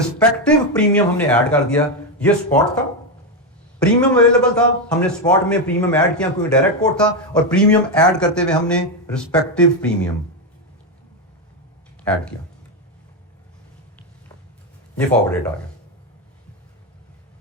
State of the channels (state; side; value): normal; both; correlation 0.07